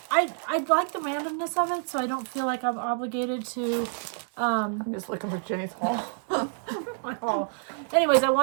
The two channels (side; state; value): left; silent; 60 dB below the other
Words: like the randomness of it, so I don't feel like I'm obligated to. I'm just looking for Jenny's haul. My haul. Anyways, I